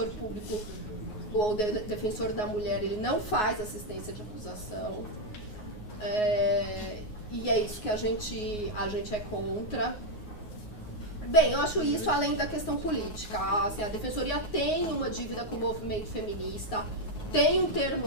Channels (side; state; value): right; late; 9.5 ms